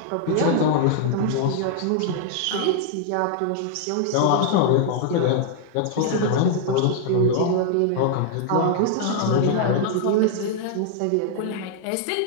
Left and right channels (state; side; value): different; both; correlation -0.01